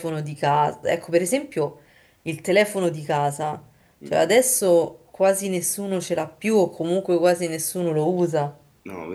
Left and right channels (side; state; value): both; identical; correlation 1.00